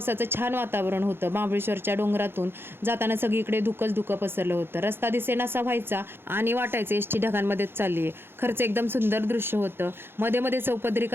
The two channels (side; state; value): left; late; 0.11 ms